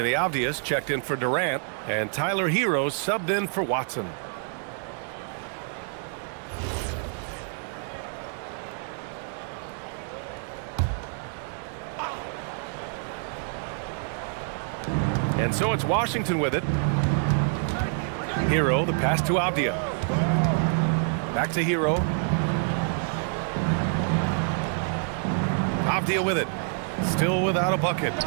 Avdia's checked in for Durant. And Tyler Hero subbed in for Watson. And so it's Washington with it. Hero, the pass to Avdia. Back to Hero. Avdia with it. Still without a bucket.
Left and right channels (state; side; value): silent; left; 56 dB below the other